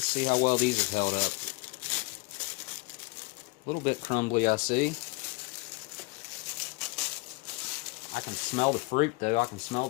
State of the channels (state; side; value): quieter; right; 25.1 dB